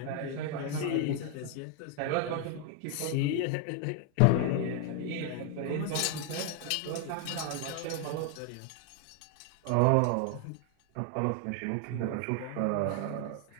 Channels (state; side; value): different; both; correlation 0.00